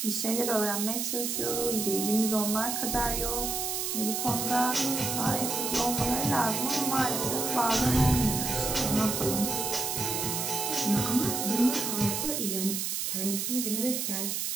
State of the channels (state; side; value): noise; right; hiss, 1 dB below the sound